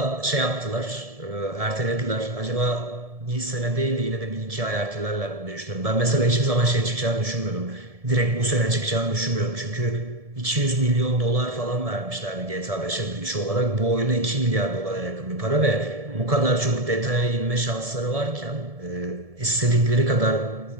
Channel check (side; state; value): left; late; 1.7 ms